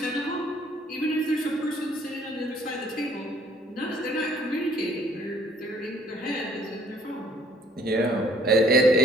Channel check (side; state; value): both; normal; correlation 0.60